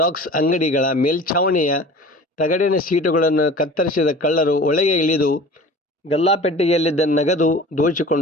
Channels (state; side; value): normal; both; correlation 0.41